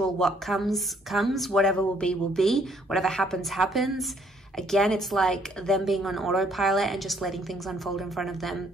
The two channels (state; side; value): normal; both; correlation 0.66